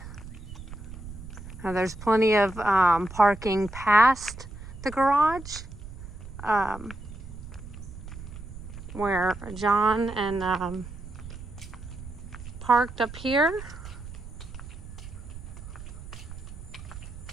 Now there's plenty of parking past the garage, where John and parked up here.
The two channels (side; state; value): right; noise; rumble, 12 dB below the sound